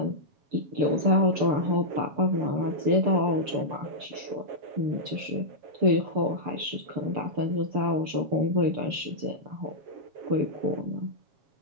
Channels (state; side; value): late; left; 6.9 ms